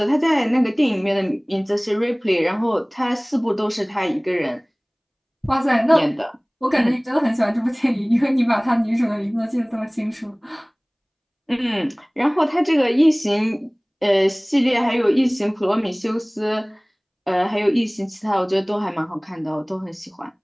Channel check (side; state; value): both; identical; correlation 1.00